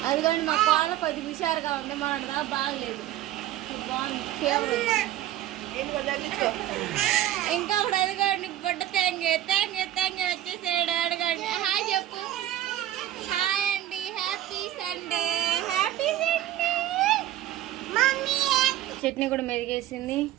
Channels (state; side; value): quieter; left; 13.2 dB